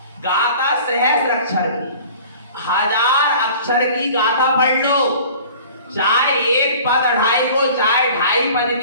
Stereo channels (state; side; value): inverted; both; correlation -0.45